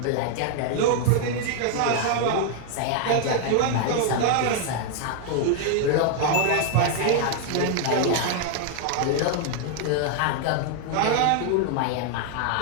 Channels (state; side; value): different; both; correlation 0.00